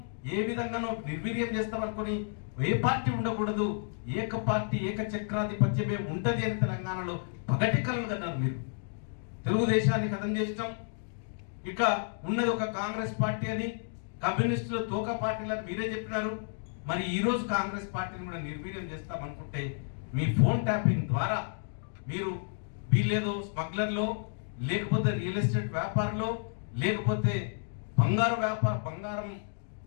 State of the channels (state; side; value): silent; right; digital silence